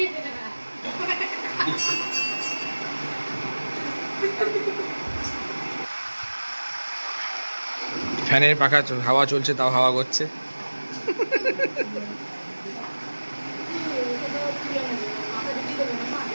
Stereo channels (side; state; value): both; inverted; correlation -1.00